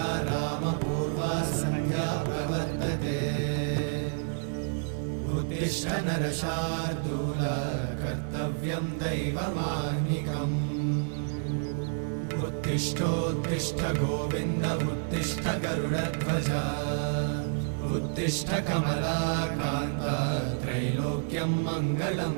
रामपूर्वा सन्ध्या प्रवर्तते उत्तिष्ठ नरशार्दूल कर्तव्यं दैवमाह्निकम् उत्तिष्ठोत्तिष्ठ गोविन्द उत्तिष्ठ गरुडध्वज उत्तिष्ठ कमलाकान्त त्रैलोक्यं मङ्गलं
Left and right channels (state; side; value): silent; left; 58 dB below the other